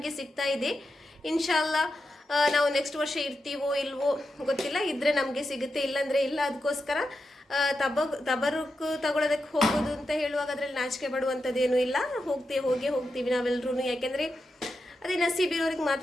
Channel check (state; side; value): normal; both; correlation 0.88